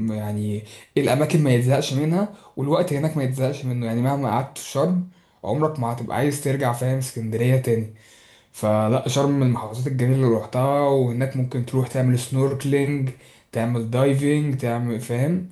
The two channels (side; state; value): both; identical; correlation 1.00